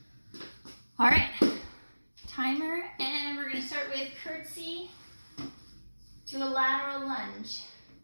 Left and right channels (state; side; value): inverted; both; correlation -1.00